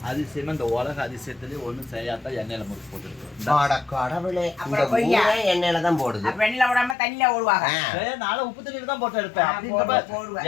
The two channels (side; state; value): right; drops out; at 7.0 s